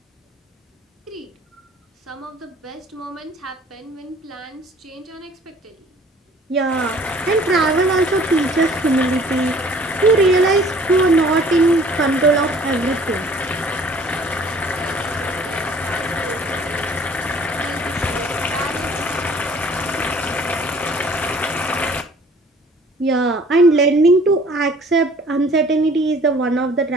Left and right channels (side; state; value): both; normal; correlation 0.53